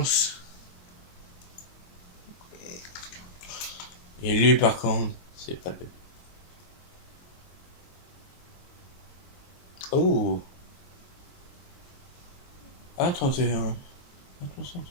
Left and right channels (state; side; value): late; right; 22 ms